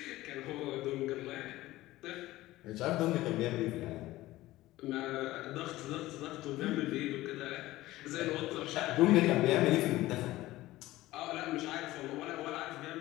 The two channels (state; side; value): quieter; right; 17.0 dB